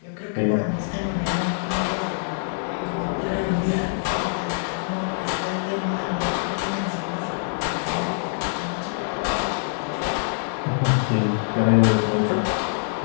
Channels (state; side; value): silent; right; 62 dB below the other